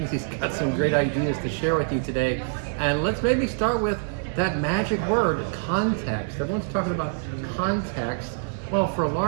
He's got some great ideas to share with you today. And let's maybe start with that magic word, context. Everyone's talking about context. Well, for a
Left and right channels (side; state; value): left; silent; digital silence